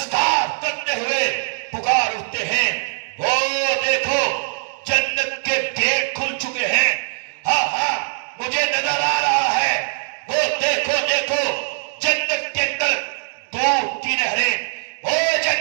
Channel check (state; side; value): silent; left; digital silence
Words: کرتے ہوئے پکار اٹھتے ہیں. وہ دیکھو جنت کے گیٹ کھل چکے ہیں. ہاں ہاں مجھے نظر آ رہا ہے. وہ دیکھو دیکھو جنت کے اندر دودھ کی نہریں، وہ